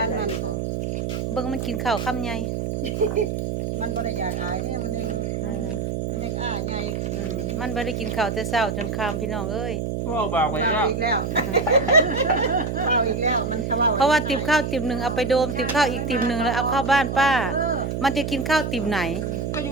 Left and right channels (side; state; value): right; noise; hum, 2 dB below the sound